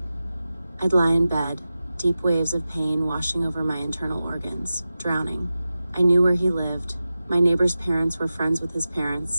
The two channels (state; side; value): inverted; both; correlation -0.94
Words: I'd lie in bed, deep waves of pain washing over my internal organs, drowning. I knew where he lived. My neighbor's parents were friends with his